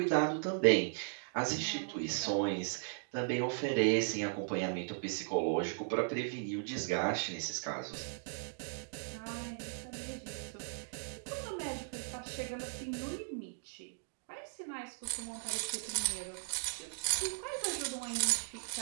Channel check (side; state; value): left; silent; digital silence